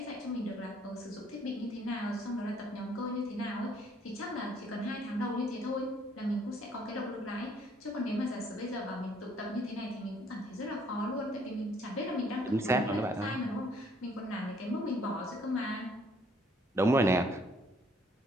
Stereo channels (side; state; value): both; normal; correlation 0.63